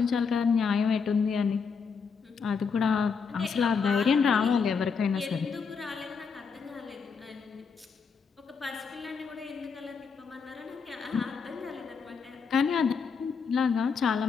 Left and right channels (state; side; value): quieter; right; 5.7 dB